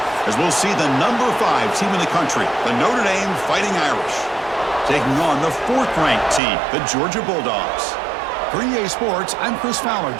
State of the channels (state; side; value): drops out; left; at 6.4 s